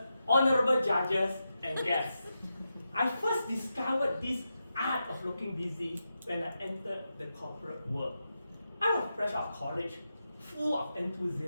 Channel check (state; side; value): inverted; both; correlation -0.89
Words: honorable judges, and guests, I first discovered this art of looking busy when I entered the corporate world. I was fresh out of college, full of